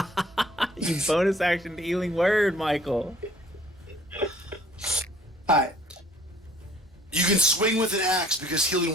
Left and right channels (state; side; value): normal; both; correlation 0.56